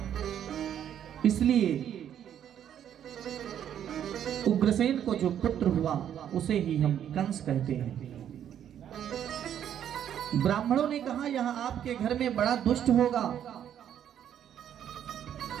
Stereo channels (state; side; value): quieter; left; 9.8 dB